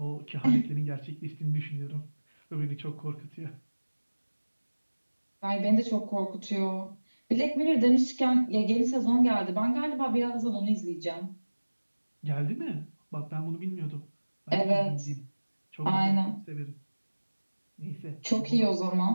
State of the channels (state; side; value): inverted; both; correlation -1.00